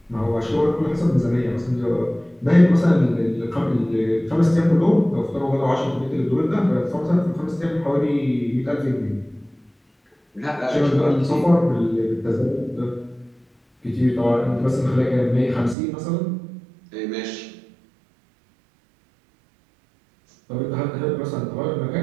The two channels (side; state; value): left; drops out; at 15.8 s